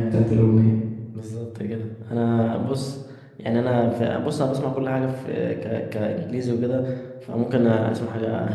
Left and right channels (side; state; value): both; identical; correlation 1.00